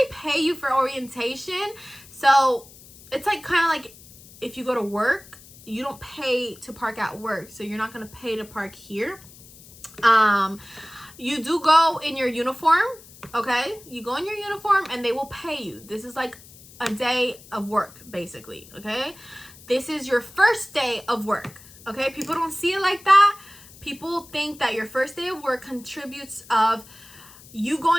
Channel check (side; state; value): left; noise; hiss, 21 dB below the sound